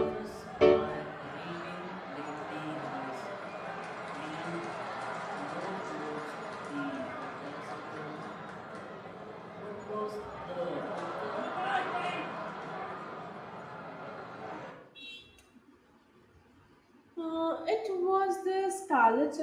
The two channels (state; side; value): identical; both; correlation 1.00